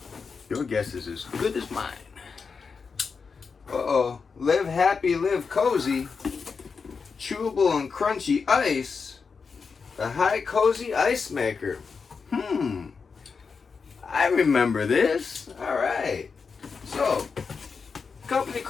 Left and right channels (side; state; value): right; quieter; 5.3 dB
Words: your guess is as good as mine. Uh-oh. Live happy, live cozy. Chewable and crunchy ice. The Hicozy Ice Maker. I remember this. Alright. So, a company